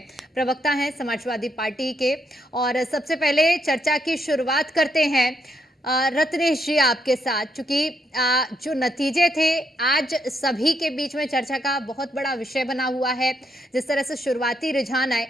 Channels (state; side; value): normal; both; correlation 0.76